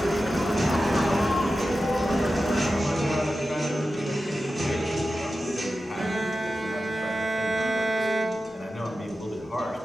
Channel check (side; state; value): both; normal; correlation 0.93